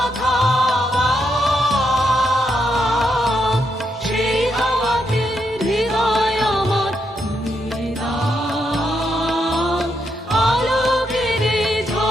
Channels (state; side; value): normal; both; correlation 0.80